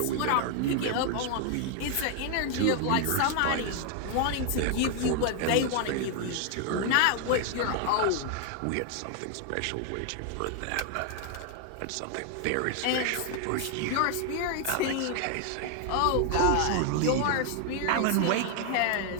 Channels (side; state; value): both; different; correlation 0.00